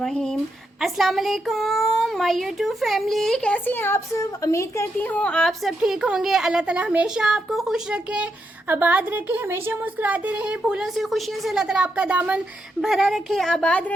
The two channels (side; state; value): both; normal; correlation 0.82